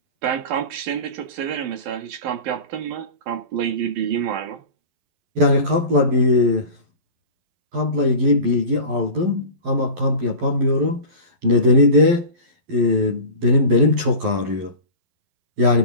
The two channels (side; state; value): left; late; 11 ms